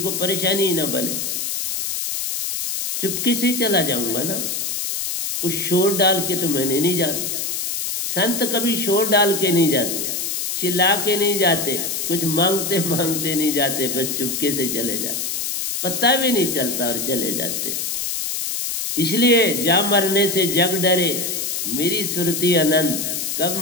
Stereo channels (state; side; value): noise; left; hiss, 2 dB below the sound